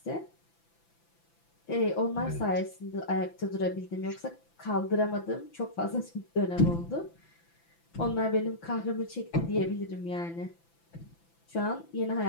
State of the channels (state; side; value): late; right; 5.9 ms